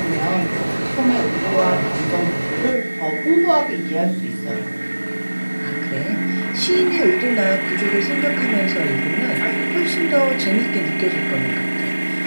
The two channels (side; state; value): both; inverted; correlation -1.00